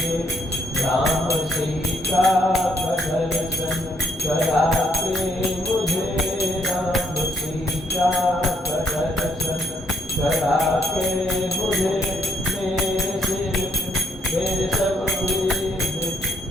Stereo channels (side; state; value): both; normal; correlation 0.72